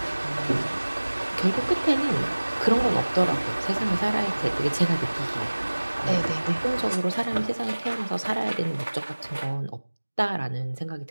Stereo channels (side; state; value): both; inverted; correlation -1.00